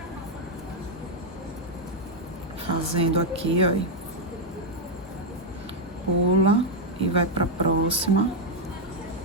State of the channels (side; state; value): both; normal; correlation 0.00